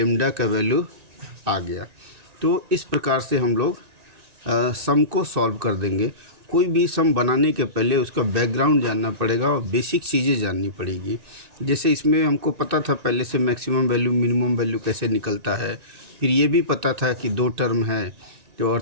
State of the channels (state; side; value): late; left; 2.6 ms